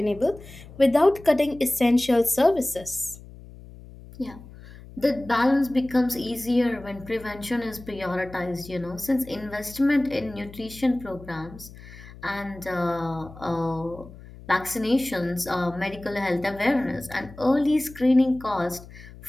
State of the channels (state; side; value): noise; left; hum, 18 dB below the sound